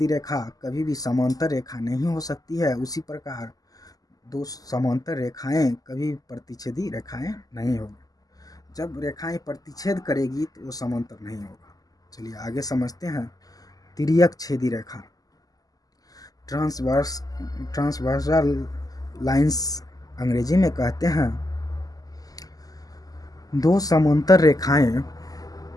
रेखा कभी भी समांतर रेखा नहीं हो सकती है, उसी प्रकार दो समांतर रेखाएं कभी प्रतिच्छेदी रेखाएं नहीं होगी। जब रेखाएं प्रतिच्छेद करेगी तो वो समांतर नहीं होगा। चलिए आगे समझते हैं। तिर्यक छेदी रेखा, ट्रांसवर्सल लाइंस अंग्रेजी में कहते हैं दो समांतर रेखाएं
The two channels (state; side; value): late; right; 0.17 ms